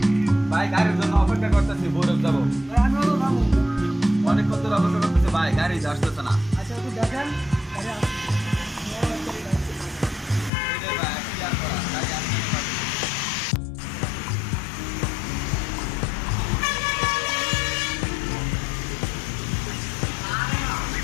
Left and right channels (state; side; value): drops out; right; at 10.5 s